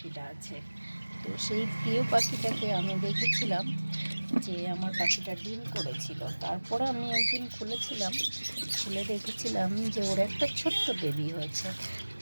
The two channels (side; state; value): both; inverted; correlation -1.00